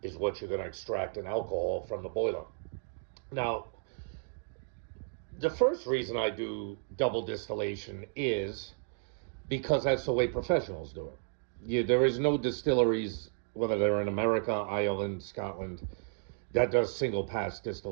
is what you're going to extract in alcohol from the boiler. Now, the first reason I do double distillation is because that's the way professionals do it. There is no distilleries, whether they're in America, Ireland, Scotland, that does single pass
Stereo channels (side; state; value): left; silent; digital silence